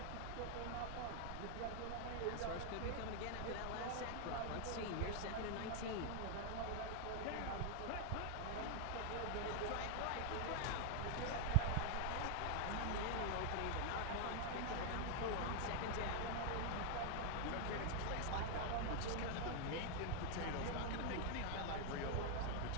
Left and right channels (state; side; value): different; both; correlation 0.00